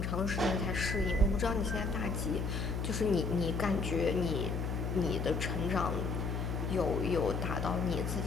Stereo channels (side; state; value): left; noise; hum, 1 dB below the sound